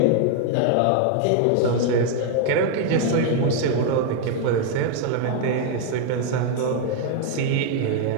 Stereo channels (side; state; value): both; different; correlation 0.00